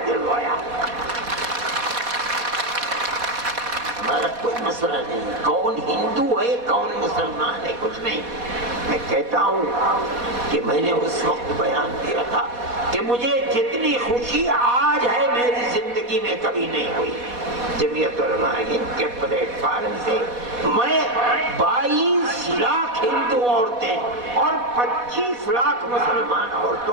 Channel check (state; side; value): late; left; 4.1 ms